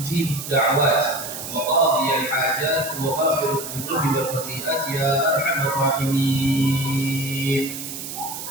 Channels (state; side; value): noise; right; hiss, 8 dB below the sound